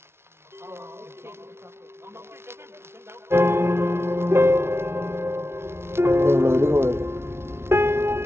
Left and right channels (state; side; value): late; left; 0.12 ms